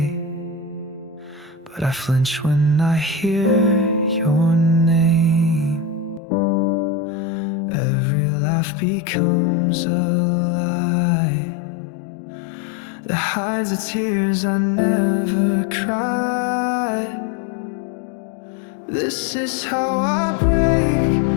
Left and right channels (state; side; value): drops out; right; at 6.2 s